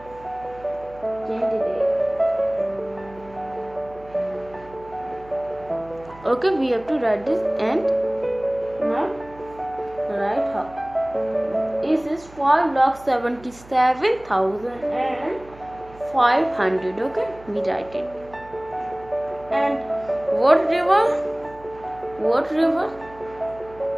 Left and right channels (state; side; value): noise; right; hum, 22 dB below the sound